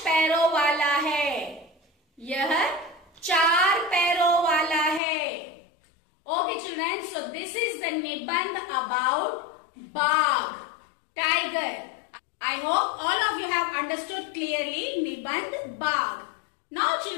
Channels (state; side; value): drops out; right; at 5.0 s